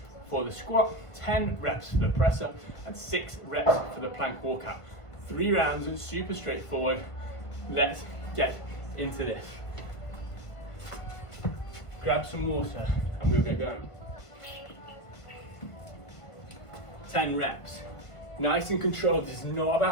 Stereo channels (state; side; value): late; right; 1.5 ms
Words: for the squat, 10 reps for the press up, and 6 reps for the plank walkout. 3 rounds, super straightforward. Let's get into this. Grab some water and we'll get going. 10 reps. Nice and controlled. This is not